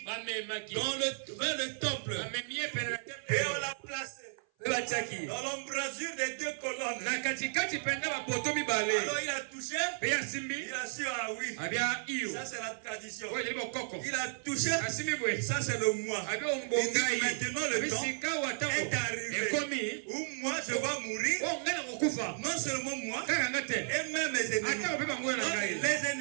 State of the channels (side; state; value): left; silent; 55 dB below the other